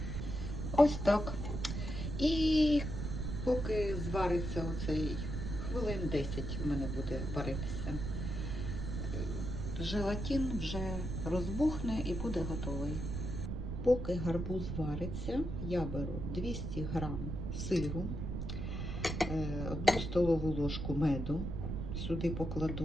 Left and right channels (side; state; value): right; noise; rumble, 4 dB below the sound